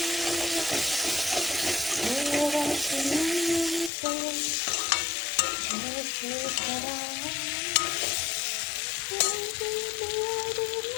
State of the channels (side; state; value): right; drops out; at 3.9 s